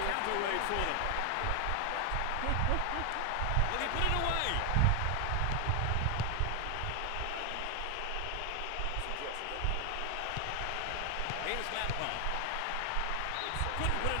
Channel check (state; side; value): different; both; correlation 0.00